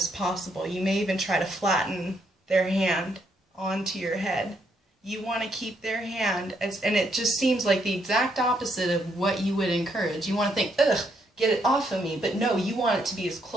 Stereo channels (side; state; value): both; normal; correlation 0.74